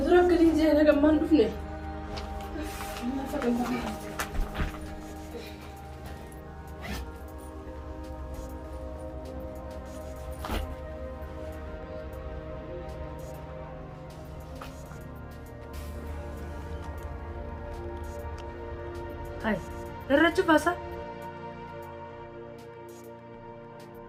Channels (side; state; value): both; identical; correlation 1.00